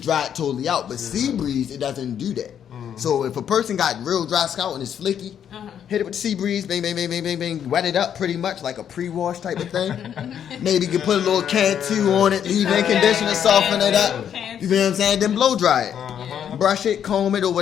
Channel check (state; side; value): quieter; right; 9.0 dB